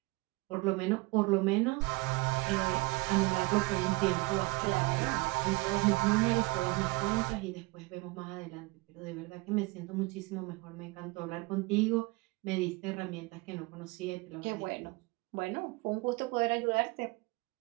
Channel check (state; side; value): quieter; left; 24.6 dB